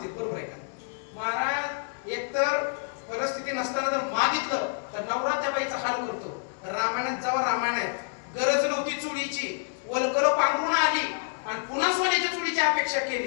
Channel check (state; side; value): silent; right; 59 dB below the other